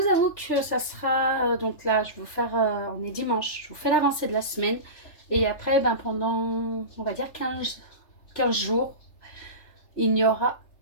avoue que ça sera, donc là je vais vous faire, on est dimanche, je vous fais l'avancée de la semaine. Et après pendant on va dire 15 jours, il n'y aura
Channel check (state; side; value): late; right; 3.3 ms